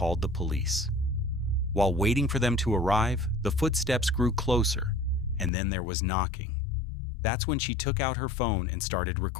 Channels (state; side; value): drops out; right; at 5.5 s